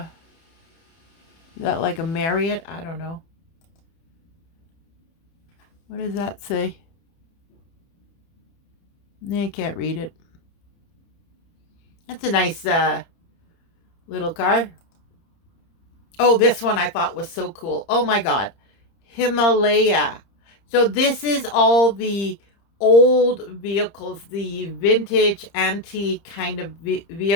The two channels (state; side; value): late; right; 30 ms